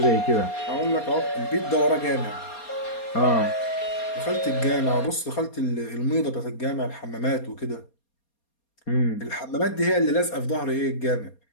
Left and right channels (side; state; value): right; late; 4.3 ms